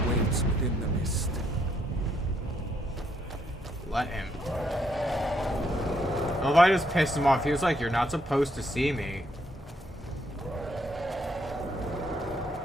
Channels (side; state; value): both; normal; correlation 0.73